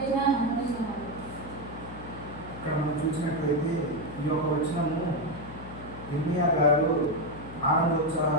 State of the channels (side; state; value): left; noise; hum, 13 dB below the sound